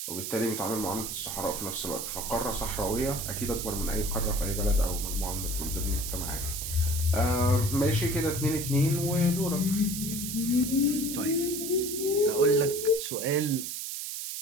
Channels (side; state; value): right; noise; hiss, 5 dB below the sound